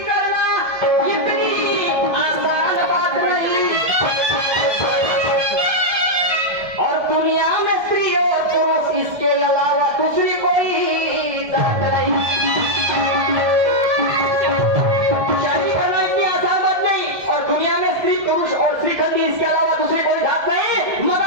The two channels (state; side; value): late; left; 1.7 ms